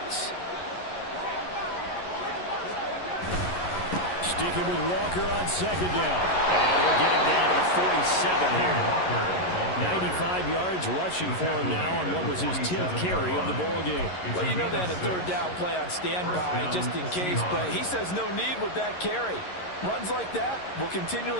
Sticking with Walker on 2nd down. And we'll get him down to the 47 here. 95 yards rushing for him now on what was his 10th carry of the ball game. Well, you know they had a 3rd down play on standby just in case, but he says no need with that carry. Runs like that will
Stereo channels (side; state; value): right; late; 11 ms